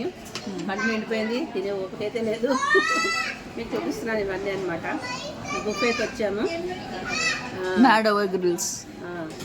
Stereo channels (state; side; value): identical; both; correlation 1.00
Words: పంట నిండిపోయింది, తినే ఓపికైతే లేదు. మీకు చూపిస్తున్నాను ఇవన్నీ అనమాట. బుఫేకి వచ్చాము. Mad Over Grills.